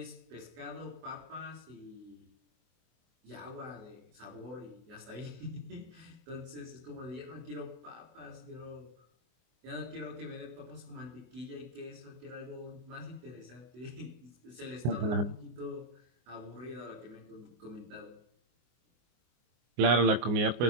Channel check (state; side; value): late; left; 24 ms